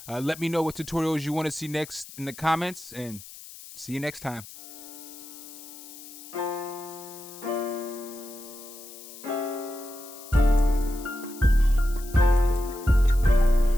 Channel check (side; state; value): left; noise; hiss, 16 dB below the sound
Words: Let me know what tutorials you want to see next in the comments, and see you next time.